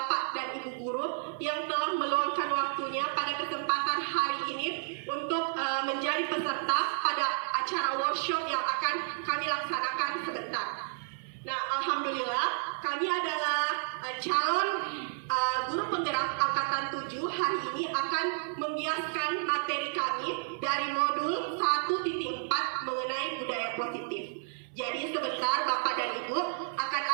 dan Ibu Guru yang telah meluangkan waktunya pada kesempatan hari ini untuk menjadi peserta pada acara workshop yang akan kami laksanakan sebentar. Nah, alhamdulillah kami adalah calon guru penggerak angkatan 7 hari ini akan membiaskan materi kami dari modul 1.4 mengenai budaya positif. Jadi sebentar Bapak dan Ibu akan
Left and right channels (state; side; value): silent; left; 57 dB below the other